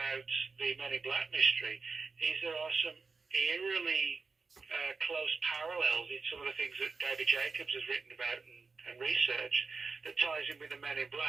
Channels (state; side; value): quieter; left; 4.4 dB